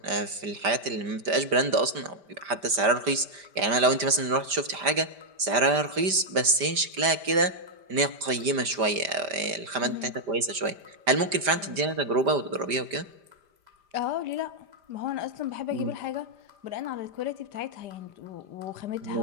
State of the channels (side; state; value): left; late; 5.0 ms